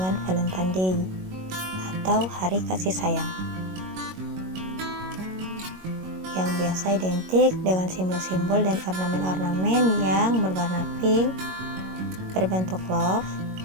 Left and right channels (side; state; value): left; late; 22 ms